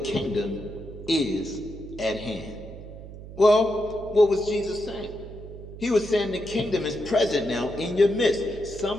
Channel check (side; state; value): right; noise; hum, 13 dB below the sound